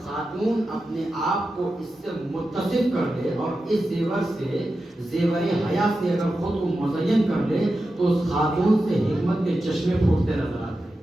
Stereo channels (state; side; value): normal; both; correlation 0.91